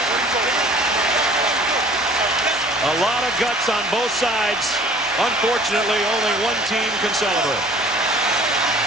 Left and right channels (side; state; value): both; normal; correlation 0.50